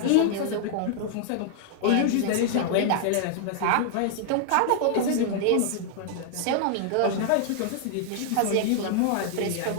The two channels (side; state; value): both; different; correlation 0.00